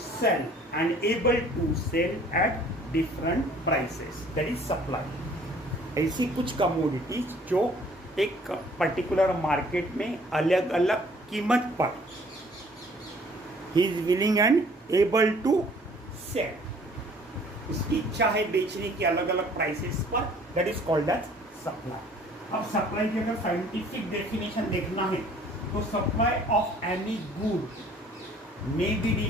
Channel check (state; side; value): normal; both; correlation 0.55